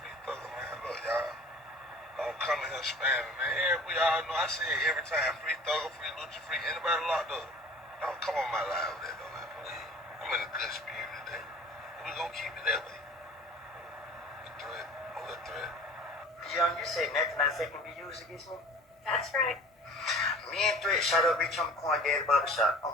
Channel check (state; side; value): normal; both; correlation 0.45